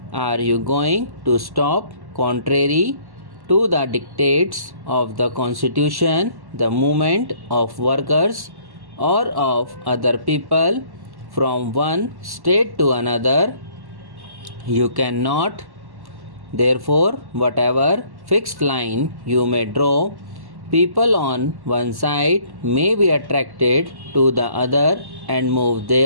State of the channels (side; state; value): left; late; 1.1 ms